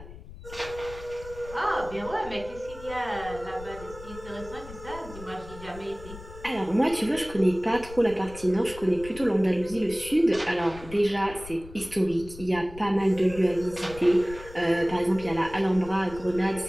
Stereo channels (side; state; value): left; noise; rumble, 16 dB below the sound